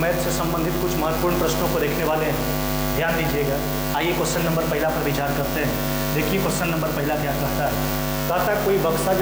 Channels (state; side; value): identical; both; correlation 1.00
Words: से संबंधित कुछ महत्वपूर्ण प्रश्नों को देखने वाले हैं, ध्यान दीजिएगा। आइए क्वेश्चन नंबर पहला पर विचार करते हैं। देखिए क्वेश्चन नंबर पहला क्या कहता है। कहता है कोई बक्सा